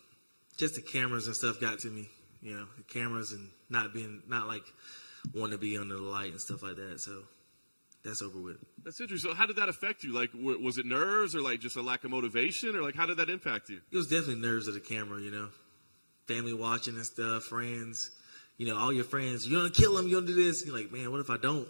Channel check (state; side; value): inverted; both; correlation -1.00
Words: just the cameras and stuff got to me. The cameras and not like wanting to be under the light and stuff like that. So that's over with. That's interesting. So how did that affect you? Like, was it nerves or like just a lack of motivation, or like how did that impact you? It was definitely nerves of the camera, family watching and stuff, friends, all your friends. You're gonna kill him. You're gonna do this. You're like, man, what if I don't?